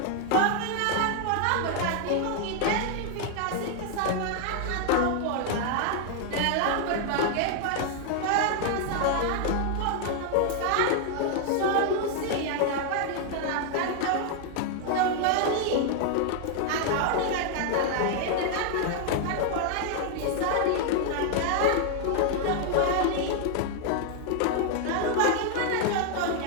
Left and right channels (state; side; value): different; both; correlation 0.00